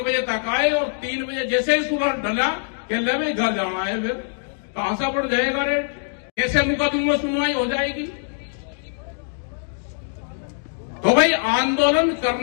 बजे तक आए और 3 बजे जैसे ही सूरज ढला कि ले भाई घर जाना है, फिर कहां से बढ़ जाएगा रेट, कैसे मुकदमे में सुनवाई हो जाएगी। तो भाई आंदोलन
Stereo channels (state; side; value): silent; right; digital silence